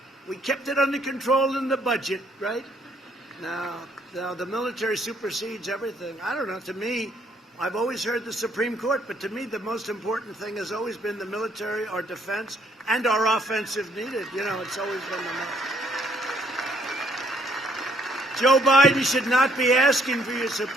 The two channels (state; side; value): normal; both; correlation 0.68